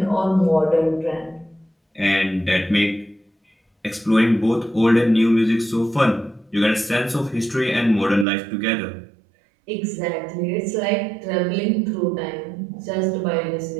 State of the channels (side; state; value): left; drops out; at 8.2 s